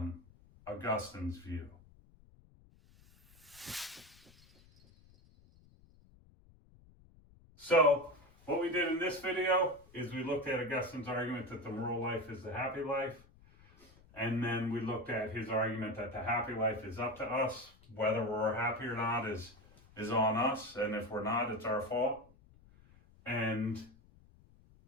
Augustine's view. So, what we did in this video is we looked at Augustine's argument that the moral life is the happy life. And then we looked at his argument that the happy life is up to us. Whether we're happy or not is on us. And if we're not, it's our fault. And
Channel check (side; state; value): left; noise; rumble, 26 dB below the sound